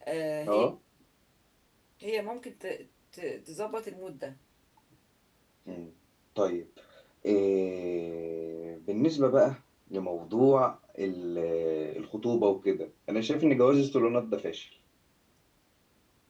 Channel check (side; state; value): both; identical; correlation 1.00